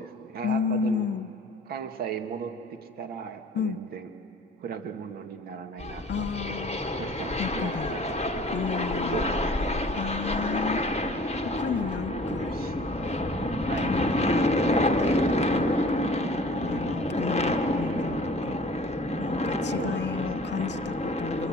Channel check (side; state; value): both; normal; correlation 0.49